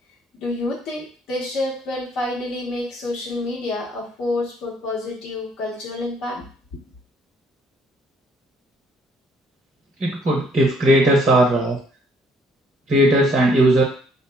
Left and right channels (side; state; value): both; normal; correlation 0.64